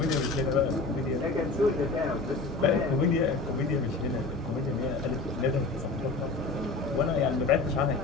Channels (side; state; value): right; quieter; 3.6 dB